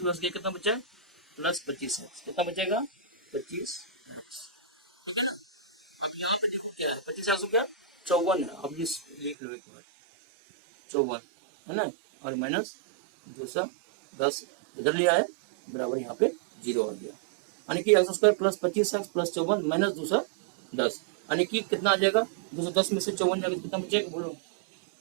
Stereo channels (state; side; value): drops out; left; at 9.3 s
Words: गया, कितना बचा, +25x, कितना बचेगा, 25x। अब यहाँ पे देखो क्या है, 25x हो गया, 54 है, अब ये लिख लो एक बार, 54, है ना, और माइनस 210 इधर लिया है, बराबर यहाँ पे 0 आ गया, यानी कि एक्स स्क्वायर +25x + 54 माइनस 210, यानी कि कितना आ जाएगा, 210 में से 54 जाएगा तो कितना बचेगा, बोलो,